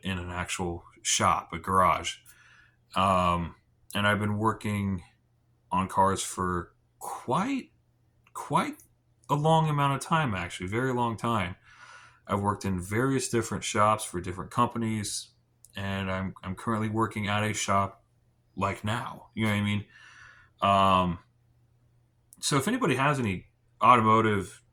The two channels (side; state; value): both; identical; correlation 1.00